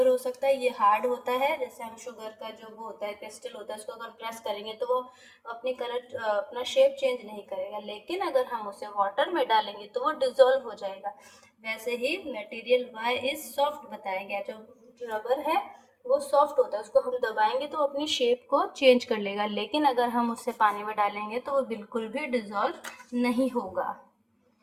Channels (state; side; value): identical; both; correlation 1.00